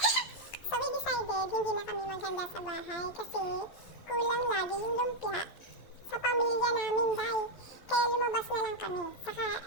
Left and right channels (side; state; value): right; late; 11 ms